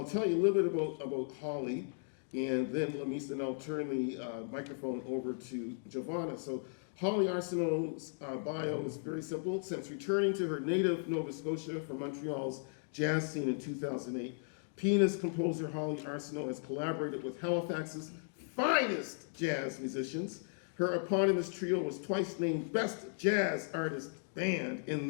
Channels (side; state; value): right; silent; digital silence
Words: tell you a little bit about Holly, and then Lamis, and I'll turn the microphone over to Giovanna. So Holly Arsenault's bio is very simple. Since returning to her native Nova Scotia from Montreal's jazz scene in 2008, pianist composer Holly Arsenault has collaborated with Halifax's finest jazz musicians. Her eponymous trio was twice named Best Jazz Artist Band in